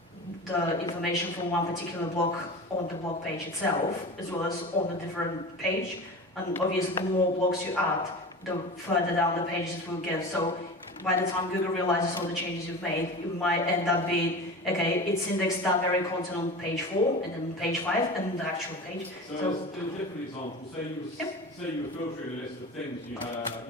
the information from one particular blog on the blog page itself, as well as on a different page. And obviously, the more blogs you add, the further down the pages it will get. So by the time Google realizes all the changes you've made, it might end up being, okay, it's indexed that very content on page 4, and then page 5, and the actual page. So as a different example, say you were filtering a list of things, you had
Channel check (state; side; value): normal; both; correlation 0.32